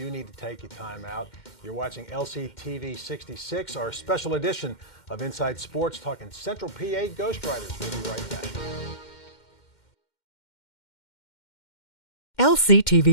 need to take a time out. You're watching LCTV 66, our special edition of Inside Sports, talking Central PA Ghost Riders. We'll be right back.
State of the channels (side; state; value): right; late; 2.1 ms